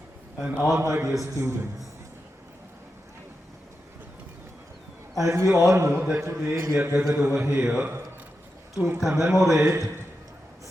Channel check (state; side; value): normal; both; correlation 0.89